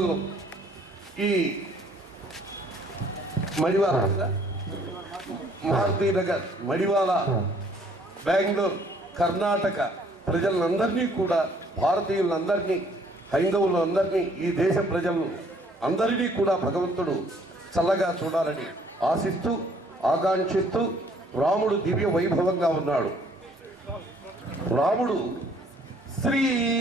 ఈ మడివాల మారుతీనగర్, మడివాల, బెంగళూరు, కర్ణాటక ప్రజలందరినీ కూడా, భారతీయులందరినీ, హైందవులందరినీ, ఈ దేశ ప్రజలను అందరినీ కూడా భగవంతుడు చల్లగా చూడాలని ఆశిస్తూ ఆకాంక్షిస్తూ రాముడు దివ్య వైభవంగా ఉన్నాడు. రాముడు శ్రీ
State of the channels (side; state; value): both; normal; correlation 0.61